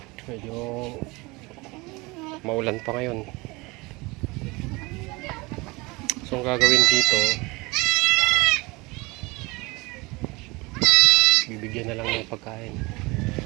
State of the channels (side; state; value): left; quieter; 24.2 dB